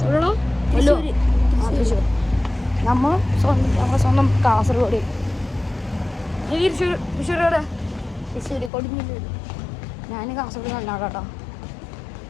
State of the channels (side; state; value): right; drops out; at 8.7 s